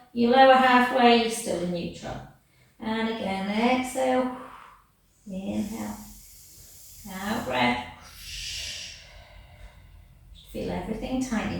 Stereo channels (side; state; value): both; identical; correlation 1.00